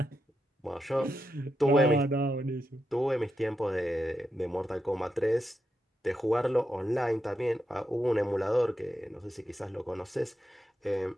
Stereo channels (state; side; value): normal; both; correlation 0.85